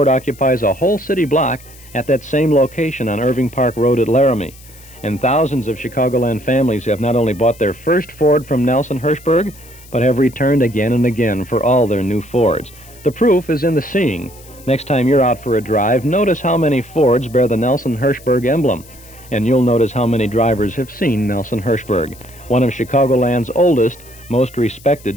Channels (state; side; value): noise; left; hiss, 22 dB below the sound